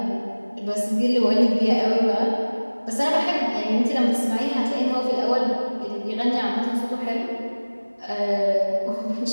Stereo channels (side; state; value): both; inverted; correlation -1.00